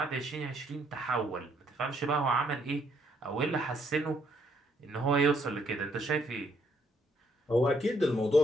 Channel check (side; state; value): both; normal; correlation 0.71